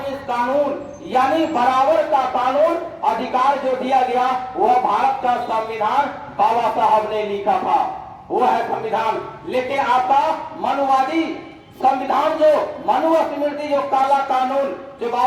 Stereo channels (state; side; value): identical; both; correlation 1.00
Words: कानून, यानी बराबर का कानून अधिकार जो दिया गया वह भारत का संविधान बाबा साहब ने लिखा था, वो है संविधान। लेकिन आपका मनुवादी संविधान जो मनुस्मृति जो काला कानून जो